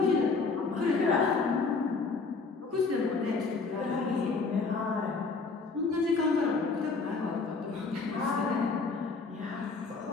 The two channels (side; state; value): right; quieter; 4.3 dB